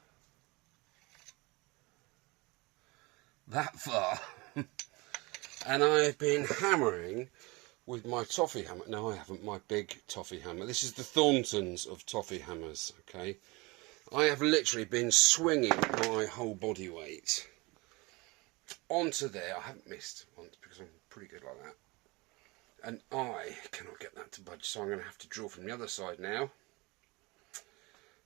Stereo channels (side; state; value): left; quieter; 24.7 dB